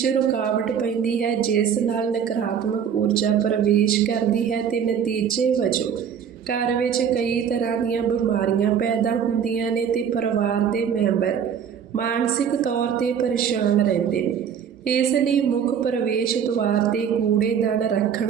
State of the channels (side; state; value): left; quieter; 7.9 dB